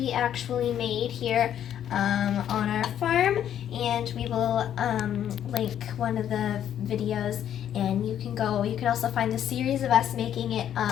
actually made here on our farm, and we will link one of the videos, and you can also find the series of us making it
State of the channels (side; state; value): right; quieter; 10.2 dB